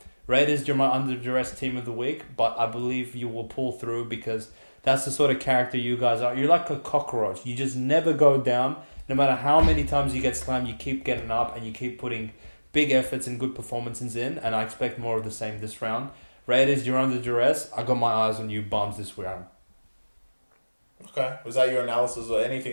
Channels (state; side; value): inverted; both; correlation -1.00